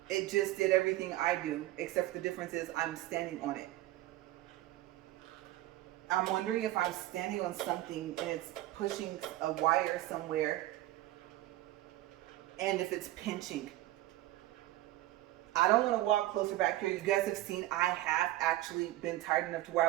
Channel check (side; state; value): left; quieter; 16.1 dB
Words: it just did everything I do, except the difference is I'm standing on it. I'm wondering if I'm standing on something and it's pushing a wire somewhere, and if it's pinching. I don't want to walk closer back here. You guys have seen I have actually been tired enough to where